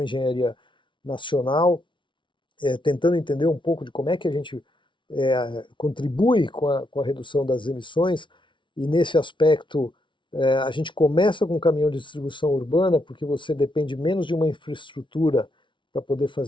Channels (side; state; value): right; late; 0.24 ms